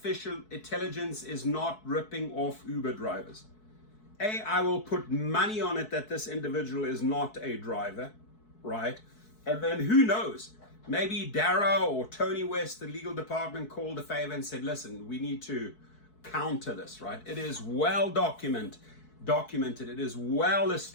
intelligence, is not ripping off Uber drivers. I will put money on it that this individual is not a driver, right? And then who knows? Maybe Dara or Tony West, the legal department, called a favor and said, listen, we need to counter this, right? It is well documented. It is well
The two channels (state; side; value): late; right; 4.6 ms